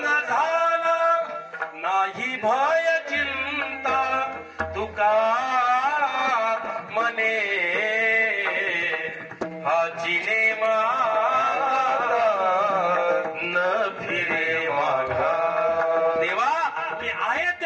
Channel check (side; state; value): both; identical; correlation 1.00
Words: झाला, नाही भय चिंता तुका मने, हाची नेमाता न फिरे माघारी. देवा, मी आहे